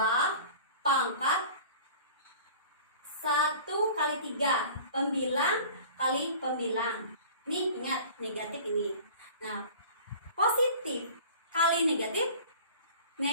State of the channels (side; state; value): both; inverted; correlation -0.43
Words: pangkat 1 kali 3 pembilang kali pembilang. Ini ingat negatif ini. Nah, positif kali negatif